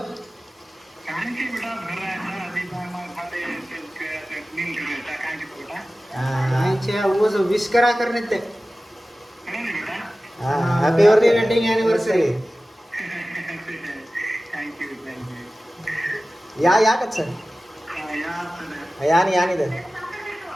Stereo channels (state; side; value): normal; both; correlation 0.96